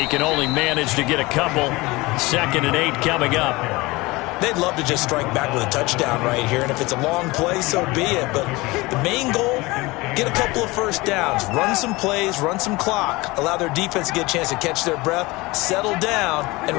can only manage to get a couple. 2nd and 8 coming up. They'd love to just strike back with a touchdown right here, and if it's a long play, so be it. But the main goal, get a couple of first downs, run some plays, run some clock, allow their defense to get a chance to catch their breath, settle down, and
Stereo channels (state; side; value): quieter; right; 22.2 dB